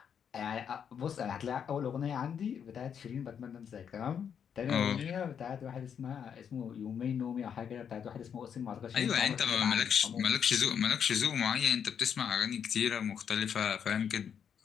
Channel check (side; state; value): right; quieter; 7.8 dB